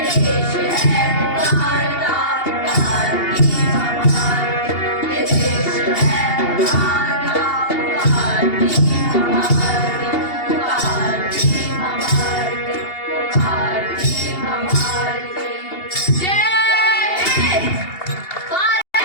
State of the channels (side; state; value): right; late; 2.8 ms